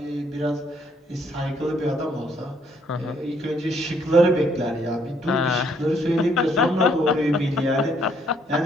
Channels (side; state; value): both; normal; correlation 0.68